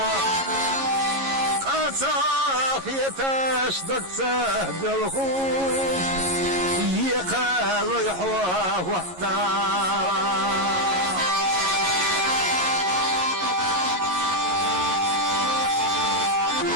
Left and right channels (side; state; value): left; late; 11 ms